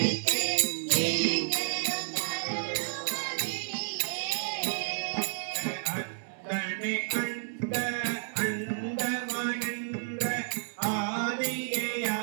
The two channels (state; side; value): silent; left; digital silence